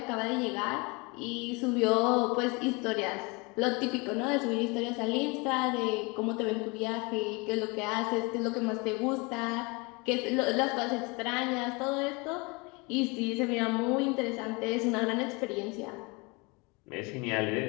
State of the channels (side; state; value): right; quieter; 27.9 dB